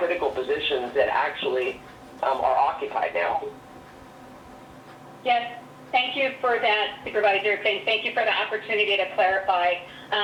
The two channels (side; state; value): both; identical; correlation 1.00